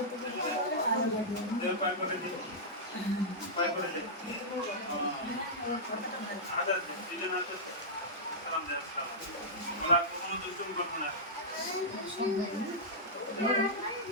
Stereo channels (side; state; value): both; normal; correlation -0.12